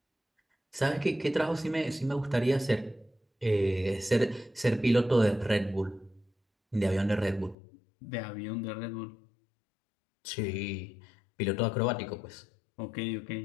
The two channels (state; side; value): drops out; right; at 7.6 s